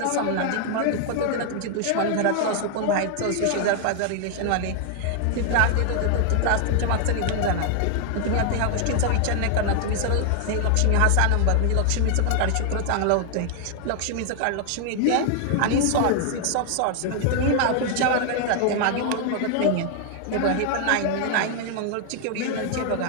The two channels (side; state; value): both; different; correlation 0.00